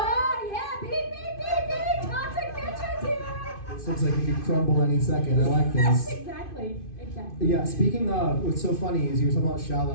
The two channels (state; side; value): late; right; 2.5 ms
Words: yeah, beep, beep, beep, beep, toxic bitches here. This looks like it could crumble any second. I like this. Exactly. Yeah, speaking of, what's so funny is you were talking about